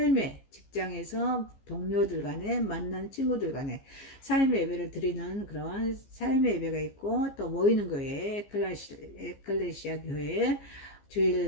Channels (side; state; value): right; late; 15 ms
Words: 직장에서 동료들 간에 만난 친구들 간에 삶의 예배를 드리는 그런 삶의 예배가 있고, 또 모이는 교회, 에클레시아 교회,